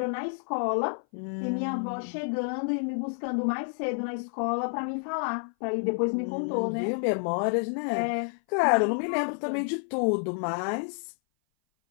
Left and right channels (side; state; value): right; silent; 57 dB below the other